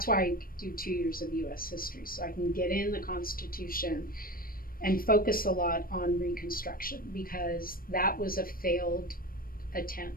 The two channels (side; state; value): right; late; 0.42 ms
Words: why I do 2 years of US history, so I can get in the Constitution and focus a lot on Reconstruction, because that was a failed